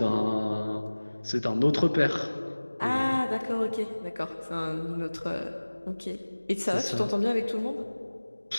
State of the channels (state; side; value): inverted; both; correlation -1.00